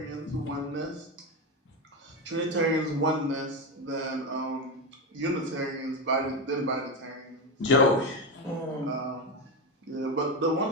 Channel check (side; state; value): both; normal; correlation 0.14